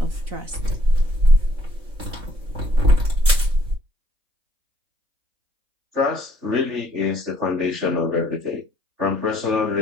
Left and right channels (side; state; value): left; late; 3.4 ms